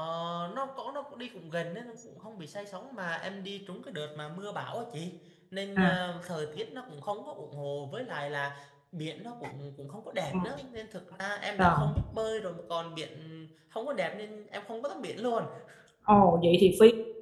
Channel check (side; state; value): both; identical; correlation 1.00